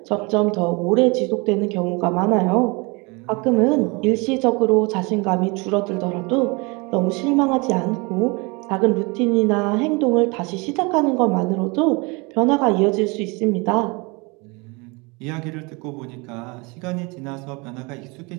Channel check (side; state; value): left; quieter; 27.9 dB